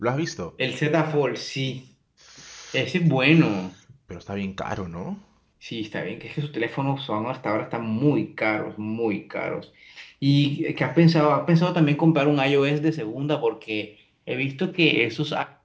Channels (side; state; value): both; identical; correlation 1.00